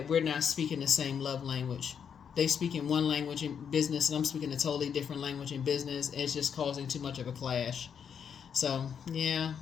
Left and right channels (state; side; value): quieter; right; 7.4 dB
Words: we're not speaking the same love language. They speak in one language in business, and I'm speaking a totally different language in business. It's just causing too much of a clash. So, yeah,